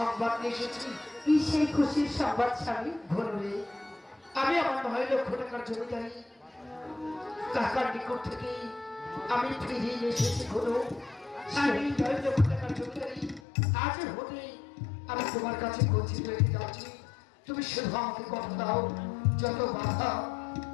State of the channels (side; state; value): right; drops out; at 13.4 s